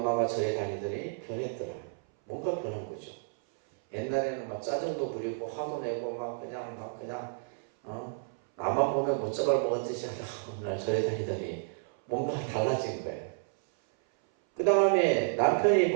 절에 다니더니 변했더라. 뭔가 변한 거죠. 옛날에는 막 짜증도 부리고 화도 내고 그냥 나만 보면 못 잡아먹었듯이 하다가 어느 날 절에 다니더니 뭔가 달라진 거예요. 그 다음에 남편이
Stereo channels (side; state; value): left; silent; 57 dB below the other